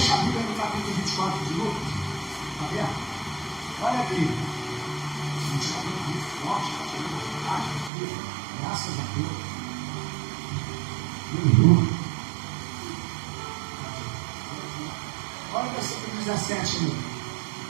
a Bíblia no capítulo 24 de Lucas. Está vendo? Olha aqui. A gente está vendo muito forte, está vendo vontade aqui. Graças a Deus. Aleluia. Olha o versículo 17 aí.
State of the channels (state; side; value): drops out; left; at 7.9 s